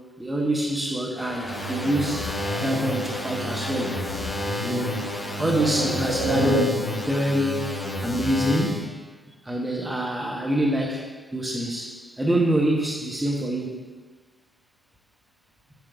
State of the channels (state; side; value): normal; both; correlation 0.76